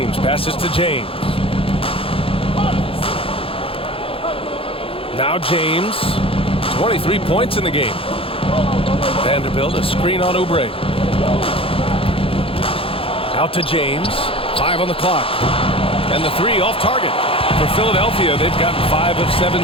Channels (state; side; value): late; right; 0.27 ms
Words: passes to James. Now James. 23 points in the game. Vanderbilt, a screen on Oubre. Out to James. 5 on the clock. And the 3 off target. For Philadelphia, they've gotten 5 of 7